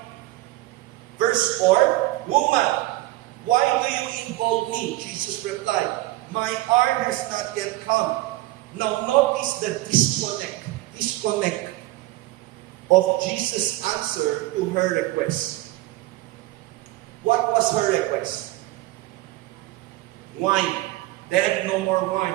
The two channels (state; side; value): quieter; left; 17.8 dB